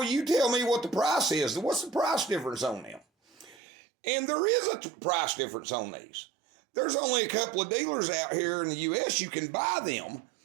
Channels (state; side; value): drops out; left; at 3.6 s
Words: you tell me what the price is. What's the price difference on them?" And there is a price difference on these. There's only a couple of dealers out here in the U.S. you can buy them